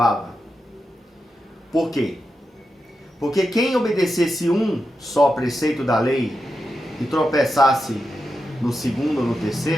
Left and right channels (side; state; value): both; normal; correlation 0.88